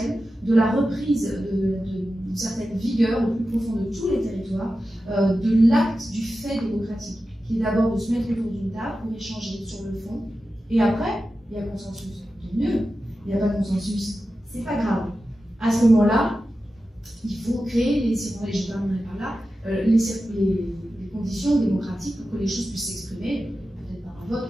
de la reprise d'une certaine vigueur au plus profond de tous les territoires, de l'acte du fait démocratique, qui est d'abord de se mettre autour d'une table pour échanger sur le fond, et après, il y a consensus. Tant mieux, il n'y a pas de consensus, c'est pas grave. À ce moment-là, il faut créer, je terminerai par là, les conditions démocratiques pour que les choses puissent s'exprimer, peut-être par un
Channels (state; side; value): normal; both; correlation 0.93